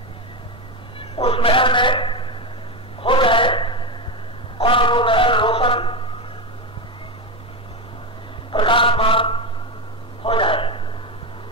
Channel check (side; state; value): both; normal; correlation 0.13